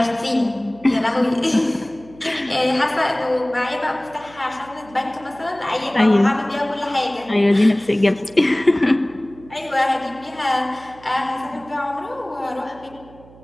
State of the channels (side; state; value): right; noise; hum, 23 dB below the sound